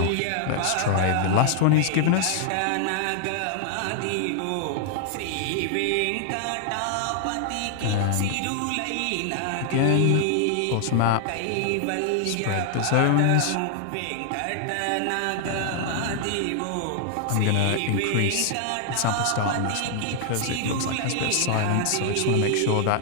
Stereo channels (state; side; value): different; both; correlation 0.00